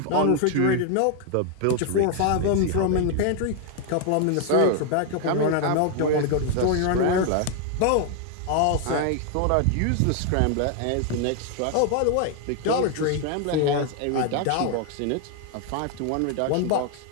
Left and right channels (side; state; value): both; different; correlation 0.00